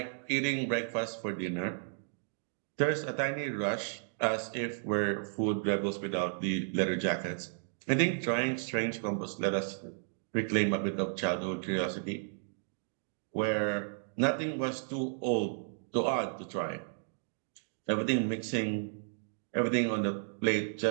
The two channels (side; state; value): left; silent; digital silence